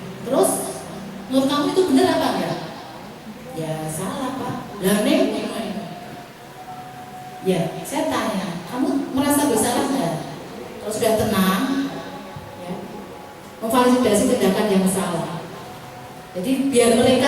Terus menurut kamu itu benar apa enggak? Ya salah Pak. Lah Neng, ya saya tanya, kamu merasa bersalah nggak? Kalau sudah tenang, ya, memvalidasi tindakan yang salah. Jadi biar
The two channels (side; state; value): both; identical; correlation 1.00